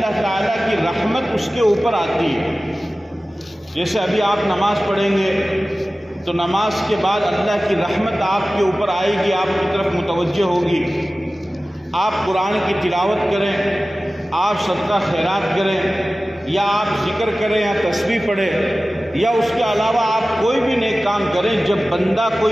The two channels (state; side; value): normal; both; correlation 0.96